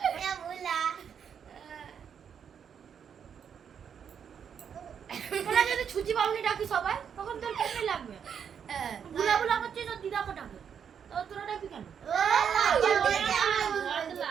তোরা যদি ছুচি বাবুনি ডাকি সবাই তখন তোর কেমন লাগবে বুলা বুলা করছিস তোর দিদাকে ডাকে তো তোরা ডাকি কেন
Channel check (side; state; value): left; quieter; 7.6 dB